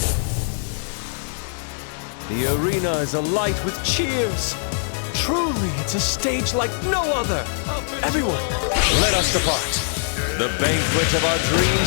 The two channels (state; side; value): silent; right; digital silence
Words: The arena is alight with cheers. Truly, it's a stage like no other. Everyone, let us depart. The banquet of our